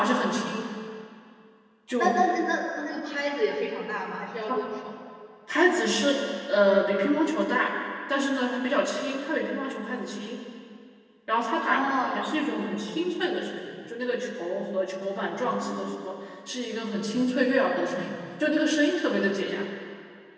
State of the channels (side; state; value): both; identical; correlation 1.00